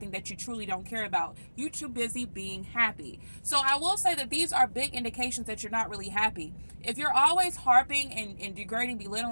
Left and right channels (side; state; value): both; inverted; correlation -1.00